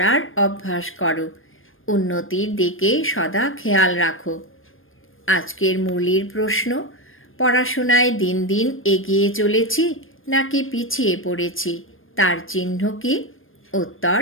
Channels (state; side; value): late; right; 0.59 ms